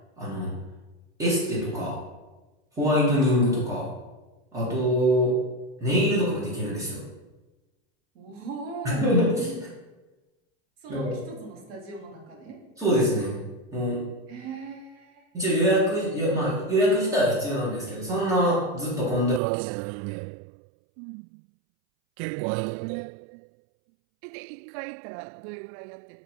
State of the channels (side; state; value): left; drops out; at 19.4 s